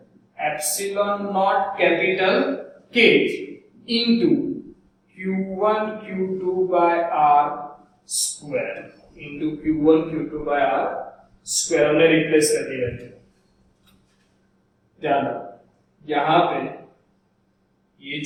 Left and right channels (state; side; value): identical; both; correlation 1.00